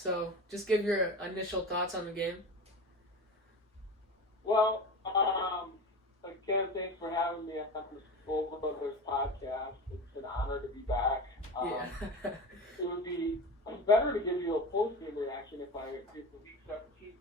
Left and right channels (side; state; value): both; normal; correlation 0.29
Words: just give your initial thoughts on the game. Well, again, thanks for having me on the School Brothers Podcast. It's an honor to be back. It would be better to give you a post-game reaction if I did the Week 17